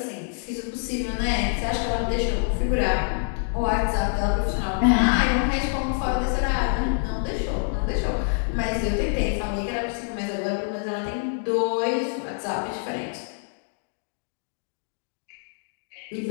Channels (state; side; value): silent; right; digital silence